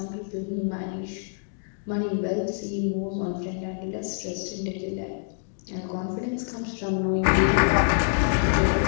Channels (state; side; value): silent; right; digital silence